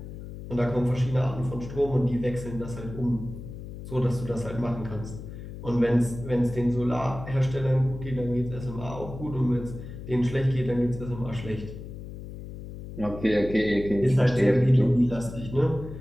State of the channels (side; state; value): left; noise; hum, 11 dB below the sound